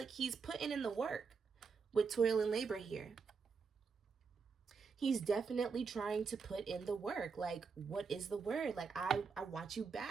he's putting in the work with toil and labor here. He's definitely trying to put in the work. Like, what is the word? Like, I want you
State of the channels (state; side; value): quieter; left; 5.3 dB